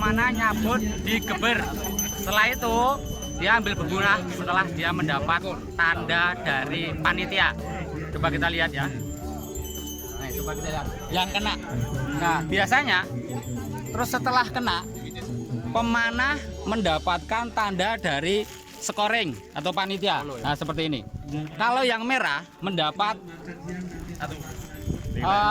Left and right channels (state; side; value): identical; both; correlation 1.00